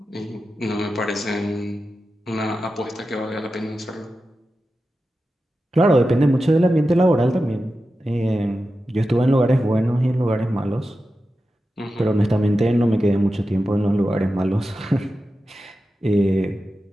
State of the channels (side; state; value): both; normal; correlation 0.92